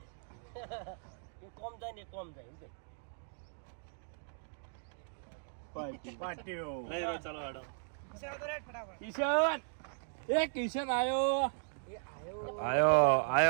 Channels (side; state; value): left; silent; digital silence